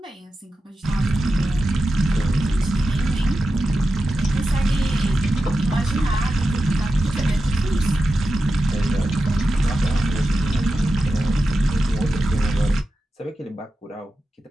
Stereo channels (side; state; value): both; normal; correlation 0.92